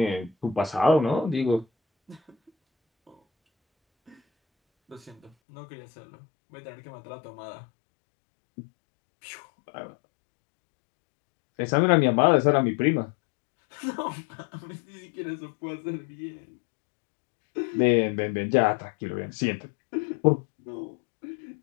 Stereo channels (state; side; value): drops out; right; at 5.3 s